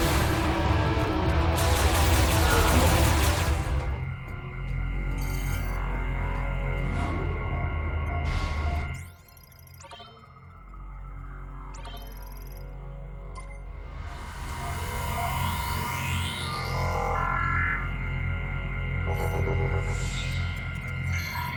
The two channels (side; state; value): both; identical; correlation 1.00